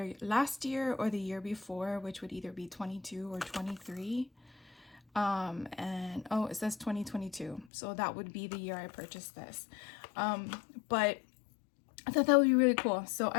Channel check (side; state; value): right; drops out; at 7.7 s